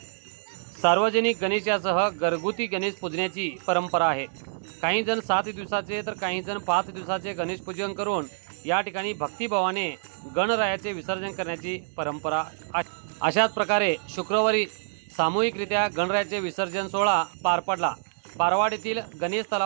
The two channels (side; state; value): left; silent; digital silence